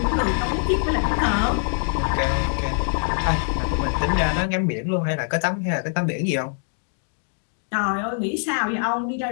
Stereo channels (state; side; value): silent; right; digital silence